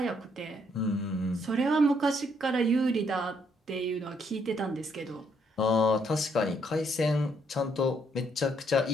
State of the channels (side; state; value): both; normal; correlation 0.71